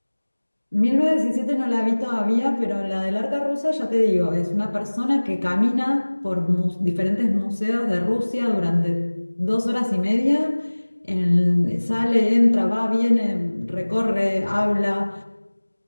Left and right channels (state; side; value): inverted; both; correlation -1.00